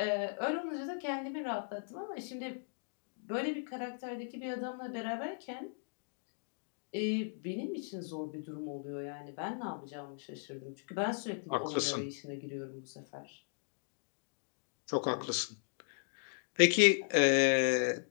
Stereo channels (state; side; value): silent; right; digital silence